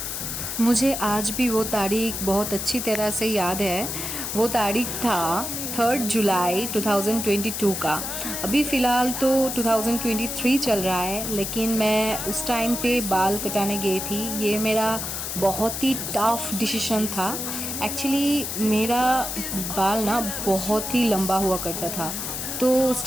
मुझे आज भी वो तारीख बहुत अच्छी तरह से याद है। वो तारीख था 3 जुलाई 2022 का। अभी फ़िलहाल तो 2023 चल रहा है, लेकिन मैं उस टाइम पे बाल कटाने गई थी। ये मेरा बहुत ही टफ़ डिसीज़न था। एक्चुअली मेरा बाल ना बहुत ही लंबा हुआ करता था, तो उस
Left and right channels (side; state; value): left; noise; hiss, 4 dB below the sound